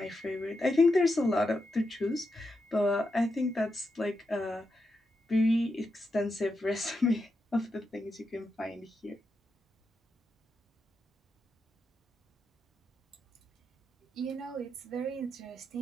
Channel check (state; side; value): normal; both; correlation 0.86